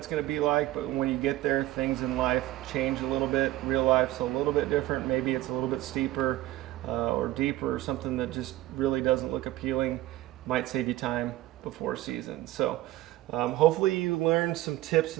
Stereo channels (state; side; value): quieter; left; 16.1 dB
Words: going to be like, but when you get there, things in life change a little bit. Real life's a little bit different. Maybe it's a little bit steeper or deeper, or something that just really doesn't look appealing. Might save you time before season. So hopefully you learned some tips